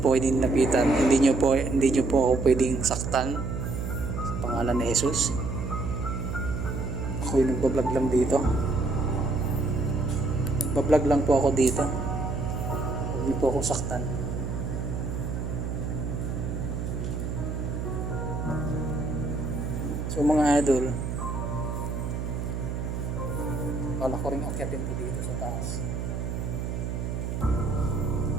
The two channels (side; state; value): right; noise; hum, 3 dB below the sound